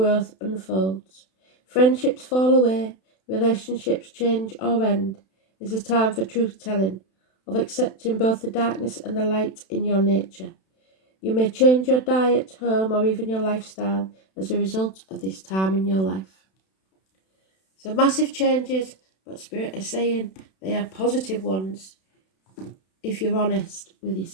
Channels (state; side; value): late; right; 32 ms